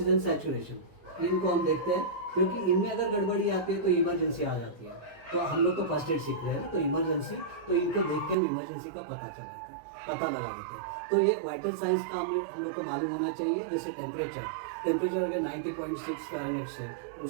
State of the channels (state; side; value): drops out; left; at 8.3 s